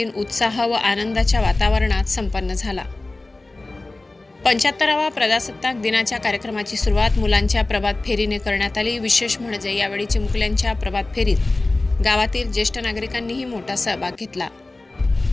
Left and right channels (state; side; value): quieter; right; 3.0 dB